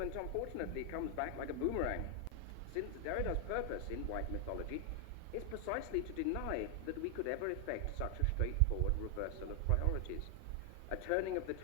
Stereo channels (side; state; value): both; different; correlation 0.00